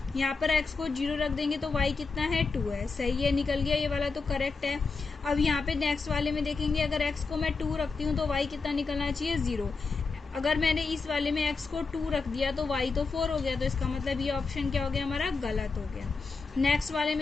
यहाँ पर x को 0 रख देंगे तो y कितना है 2 है, सही है, निकल गया, ये वाला तो करेक्ट है। अब यहाँ पे नेक्स्ट वाले में देखेंगे, अगर x को मैं 2 रखती हूँ तो y कितना निकलना चाहिए 0। अगर मैंने इस वाले में x को 2 रख दिया तो y तो 4 हो गया, तो इसका मतलब ये ऑप्शन क्या हो गया हमारा गलत हो गया। नेक्स्ट वाले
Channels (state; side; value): quieter; right; 4.4 dB